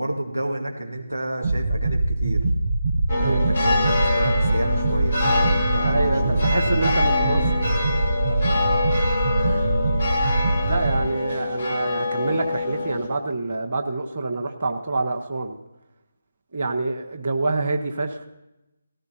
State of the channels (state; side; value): inverted; both; correlation -0.85